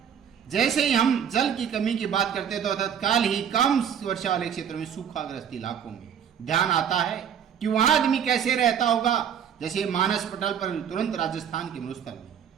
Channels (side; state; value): left; quieter; 8.4 dB